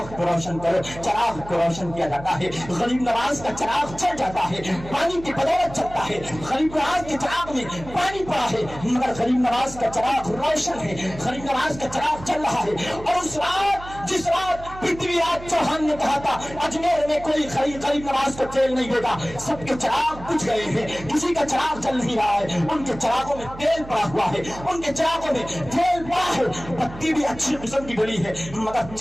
کو روشن کرو۔ چراغ کو روشن کیا جاتا ہے، غریب نواز کا چراغ چل جاتا ہے، پانی کی بدولت چلتا ہے۔ غریب نواز کے چراغ میں پانی پڑا ہے مگر غریب نواز کا چراغ روشن ہے، غریب نواز کا چراغ چل رہا ہے۔ اور اس رات جس رات پرتھوی راج چوہان نے کہا تھا اجمیر میں کوئی غریب نواز کو تیل نہیں دے گا، سب کے چراغ بجھ گئے ہیں، کسی کا چراغ چل نہیں رہا ہے، ان کے چراغوں میں تیل پڑا ہوا ہے، ان کے چراغوں میں تیل پڑا ہے، بتی بھی اچھی قسم کی ڈلی ہے مگر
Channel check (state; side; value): noise; right; hum, 15 dB below the sound